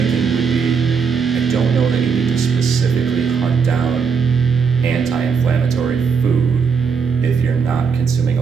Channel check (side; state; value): left; quieter; 5.8 dB